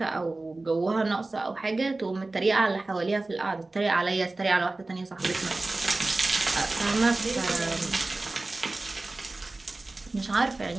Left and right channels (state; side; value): quieter; left; 3.1 dB